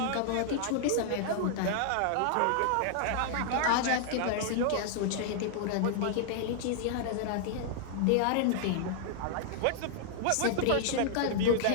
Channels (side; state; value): both; different; correlation -0.01